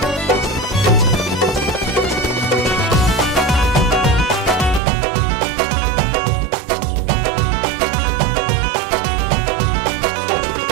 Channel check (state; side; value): drops out; left; at 4.8 s